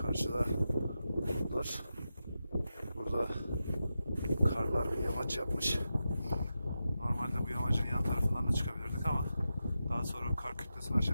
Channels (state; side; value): inverted; both; correlation -0.90